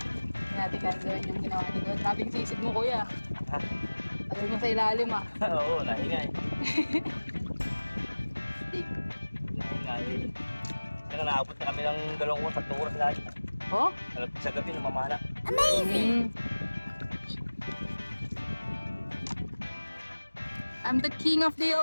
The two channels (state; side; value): inverted; both; correlation -1.00